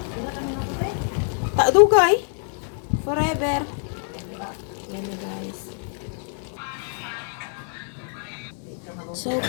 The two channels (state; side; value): silent; right; 56 dB below the other